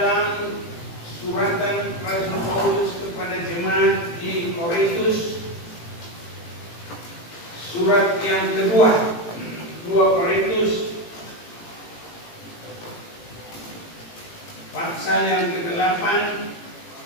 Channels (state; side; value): late; right; 18 ms